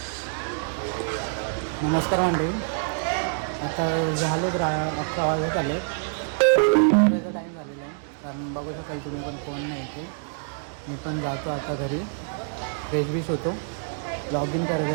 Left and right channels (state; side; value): silent; left; digital silence